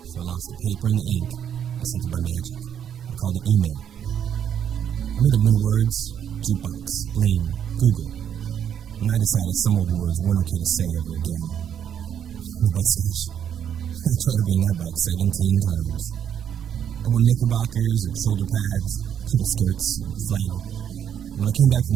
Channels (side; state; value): left; quieter; 8.9 dB